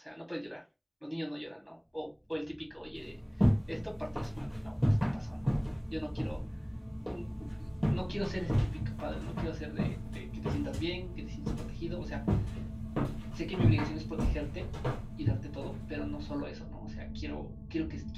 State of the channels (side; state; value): both; identical; correlation 1.00